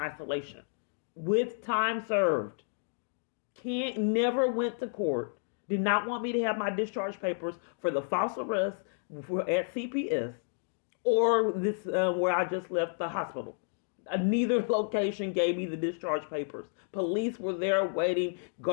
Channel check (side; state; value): right; silent; digital silence